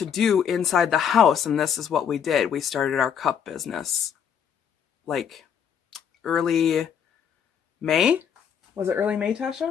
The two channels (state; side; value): quieter; right; 8.0 dB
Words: do inside the house, and this is what we did. We started our cup business like early May. Was it early May,